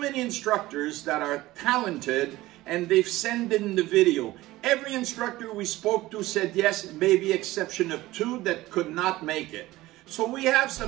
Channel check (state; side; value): quieter; left; 17.7 dB